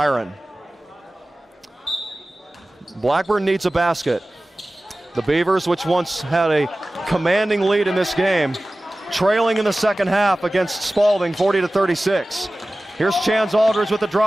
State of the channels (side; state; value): both; normal; correlation 0.97